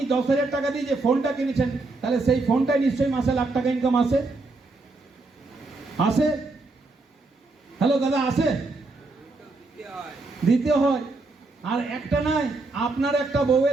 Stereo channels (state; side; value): quieter; left; 3.4 dB